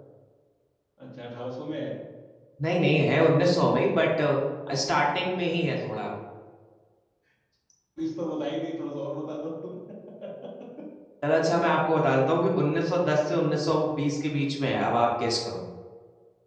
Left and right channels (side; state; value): both; identical; correlation 1.00